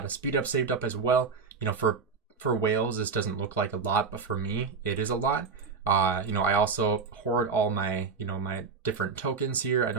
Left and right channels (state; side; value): quieter; left; 5.1 dB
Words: of speed up saved up as well. You know, for whales, this doesn't look like a lot, but for me, it is a lot. You know, I also hoard all my, you know, my different tokens here. I